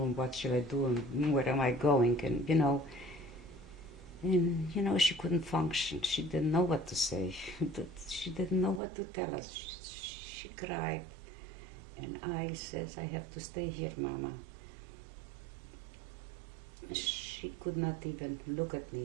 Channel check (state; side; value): drops out; left; at 8.8 s